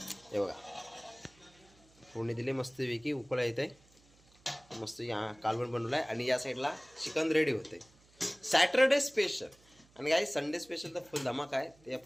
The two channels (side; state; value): right; noise; hum, 29 dB below the sound